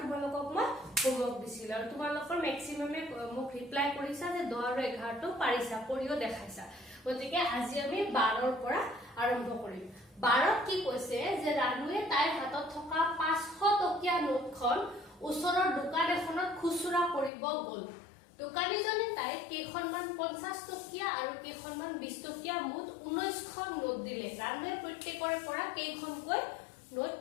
তোমালোকক মই হোমৱৰ্ক দিছিল আৰু তোমালোকৰ ম্যাক্সিমামে মোক ৰিপ্লাই কৰিছা যে 10 আৰু 11 টো পাৰিছা, কৰিও দেখাইছা। গতিকে আজি আমি 12 ৰ পৰা আৰম্ভ কৰিম। 12 কি কৈছে যে ৰানুৱে তাইৰ হাতত থকা 500 টকীয়া নোটখন ওচৰৰ দোকান এখনত খুচুৰা কৰিব গ'ল। দোকানীজনে তাইক কেইখনমান 50 টকীয়া আৰু কেইখনমান 20 টকীয়া মুঠ 19খন নোট দিলে। ৰানুৱে প্ৰত্যেকৰে পৰা কেইখনকৈ নোট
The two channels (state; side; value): drops out; right; at 17.3 s